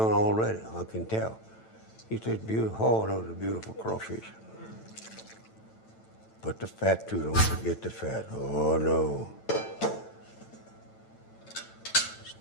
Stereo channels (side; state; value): right; late; 9.0 ms